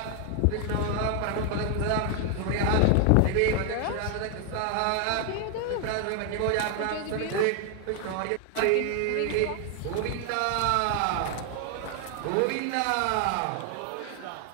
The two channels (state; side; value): different; both; correlation 0.00